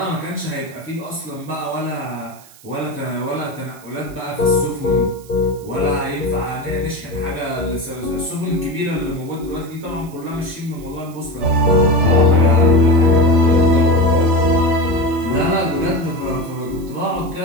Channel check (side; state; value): right; noise; hiss, 23 dB below the sound